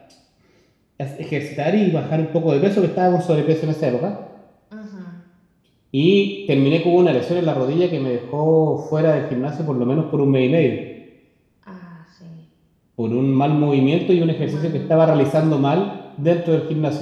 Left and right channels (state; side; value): identical; both; correlation 1.00